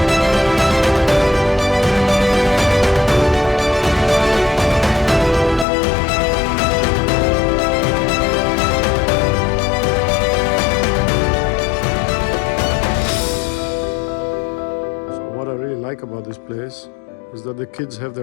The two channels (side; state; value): right; drops out; at 5.7 s